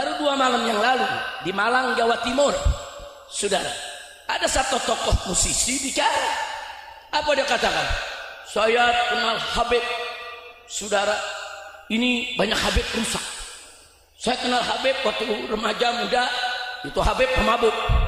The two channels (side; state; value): both; identical; correlation 1.00